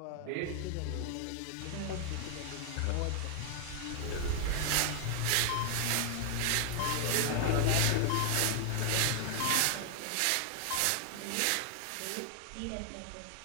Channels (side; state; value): both; different; correlation 0.00